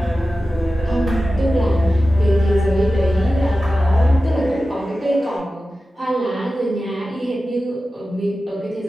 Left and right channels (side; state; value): both; normal; correlation 0.94